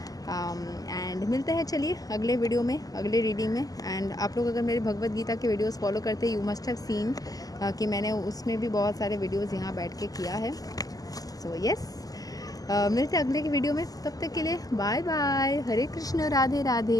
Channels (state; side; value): late; right; 0.17 ms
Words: एंड मिलते हैं चलिए अगले वीडियो में, अगले रीडिंग में। एंड आप लोग अगर मेरे भगवत गीता के वीडियोस फॉलो करते हैं, यू मस्ट हैव सीन कि मैंने उसमें भी बहुत सारे वीडियोस यहाँ बैठ के किया है। सो येस, मिलते हैं अगले की वीडियो में। तब तक के लिए बाय बाय। हरे कृष्ण, राधे